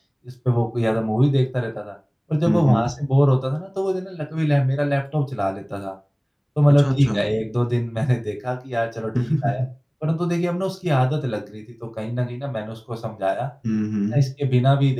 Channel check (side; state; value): both; identical; correlation 1.00